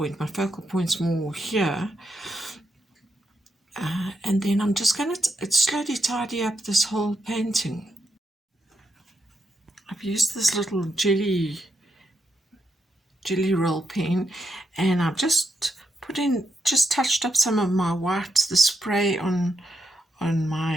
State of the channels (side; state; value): both; normal; correlation 0.82